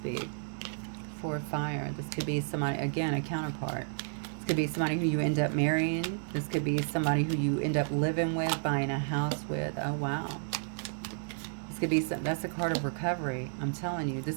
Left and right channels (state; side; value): silent; left; 57 dB below the other